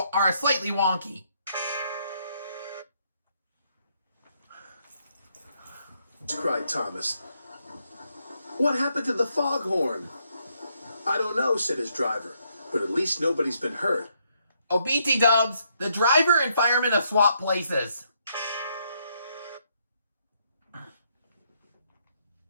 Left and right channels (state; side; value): inverted; both; correlation -0.74